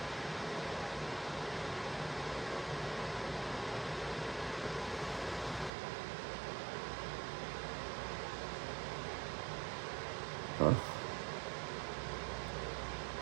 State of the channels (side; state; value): left; drops out; at 5.7 s